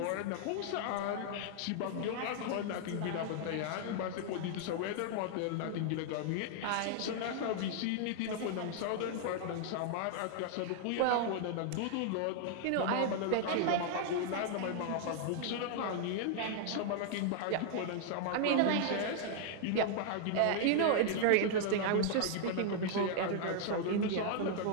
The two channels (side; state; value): both; different; correlation 0.00